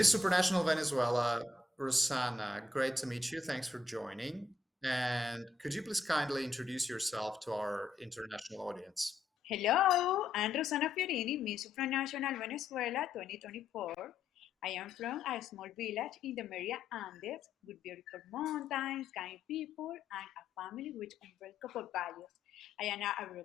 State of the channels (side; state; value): right; quieter; 3.5 dB